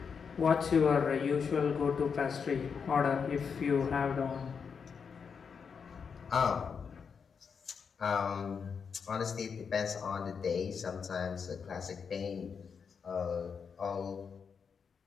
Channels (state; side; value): quieter; right; 6.2 dB